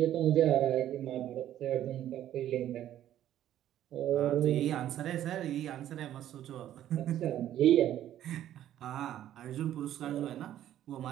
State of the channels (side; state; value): left; quieter; 11.9 dB